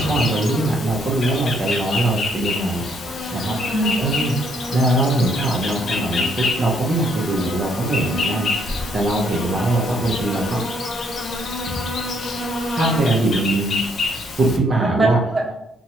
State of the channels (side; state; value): both; normal; correlation 0.69